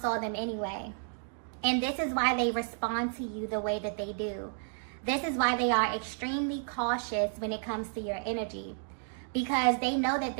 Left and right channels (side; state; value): left; silent; digital silence